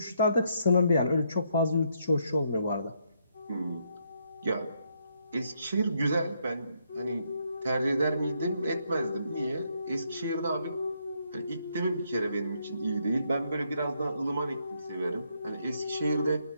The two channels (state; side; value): inverted; both; correlation -0.74